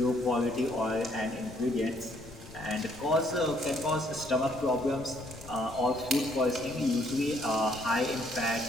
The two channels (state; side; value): noise; left; rumble, 18 dB below the sound